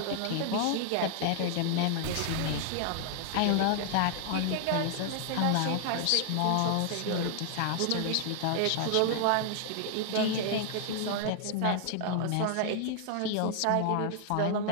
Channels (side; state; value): both; different; correlation 0.00